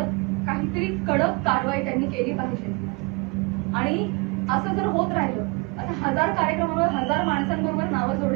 काहीतरी कडक कारवाई त्यांनी केली पाहिजे. आणि असं जर होत राहिलं, आता 1000 कार्यक्रमावर 1000 माणसांबरोबर नावं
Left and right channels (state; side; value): quieter; left; 28.3 dB